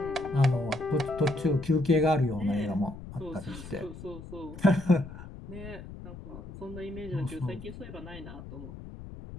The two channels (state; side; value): noise; left; rumble, 13 dB below the sound